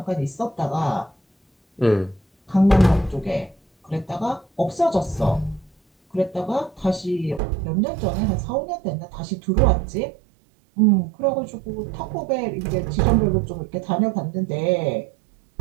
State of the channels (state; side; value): drops out; left; at 7.4 s